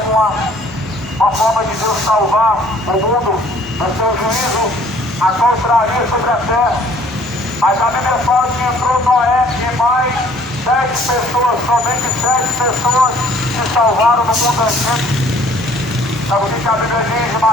forma de Deus salvar o mundo do seu juízo a qual traria sobre a terra. Mas a Bíblia fala que entrou Noé e mais 7 pessoas, somente 7 pessoas se salvaram no mundo antigo. Sabe o que a Bíblia diz em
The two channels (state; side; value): normal; both; correlation 0.57